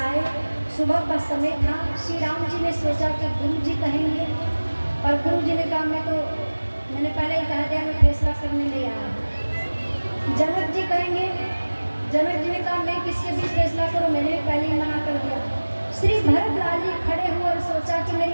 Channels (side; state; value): both; inverted; correlation -1.00